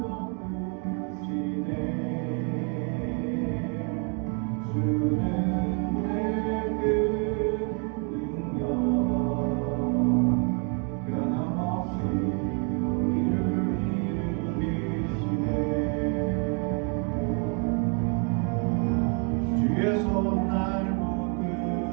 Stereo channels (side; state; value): left; quieter; 37.8 dB